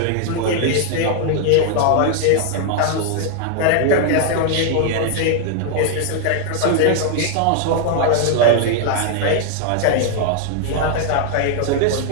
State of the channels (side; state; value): both; different; correlation 0.00